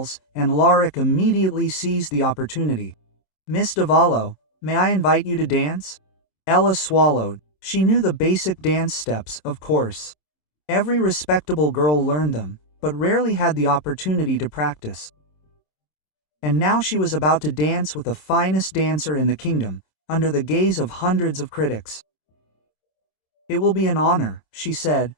and Alaric immediately seized the opportunity. "Miss Davallo, may I invite you to dance?" Ella swallowed. She knew the basic dance steps, of course. Every respectable girl learned them, but rarely had the opportunity to practice. And now she was about to dance with the finest dancer in the kingdom, under the gaze of hundreds of critics. "It will be an honor," she said,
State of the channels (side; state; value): right; late; 27 ms